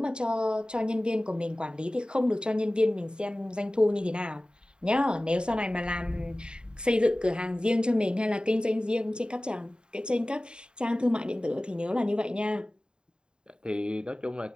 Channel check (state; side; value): late; left; 0.049 ms